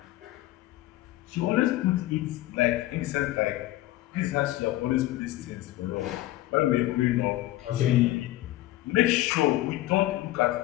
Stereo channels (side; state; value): right; quieter; 16.2 dB